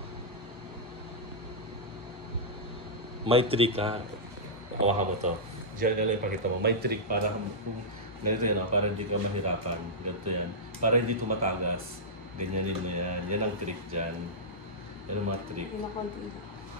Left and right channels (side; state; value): both; normal; correlation -0.11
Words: May trick ha. Hawakan mo to. Diyan na lang ipakita mo. May trick para ganito yan, para hindi ka mahirapan. Ganito yan. Para hindi tumatagas. Ganyanin mo yan. Yan ang trick dyan. Yan ang mga trick.